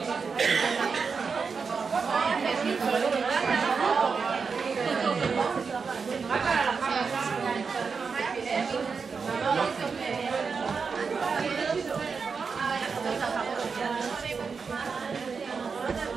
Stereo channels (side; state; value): left; quieter; 5.3 dB